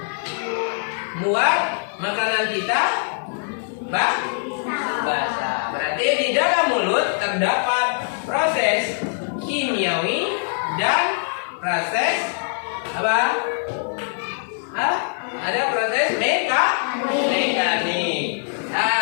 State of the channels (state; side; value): silent; right; digital silence